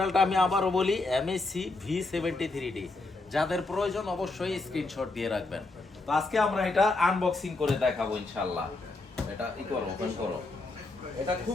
আমি আবারও বলি, MHC V73D। যাদের প্রয়োজন অবশ্যই স্ক্রিনশট দিয়ে রাখবেন। তো আজকে আমরা এটা আনবক্সিং করে দেখাবো ইনশাআল্লাহ। এটা ওপেন করো। এটা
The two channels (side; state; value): right; quieter; 3.3 dB